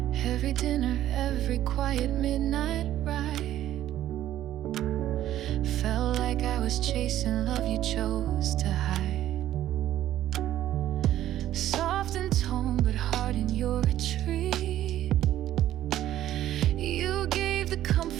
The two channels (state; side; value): quieter; left; 12.8 dB